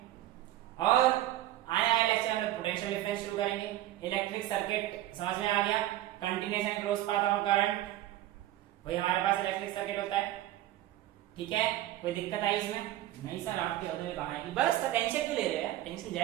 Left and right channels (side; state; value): left; quieter; 14.4 dB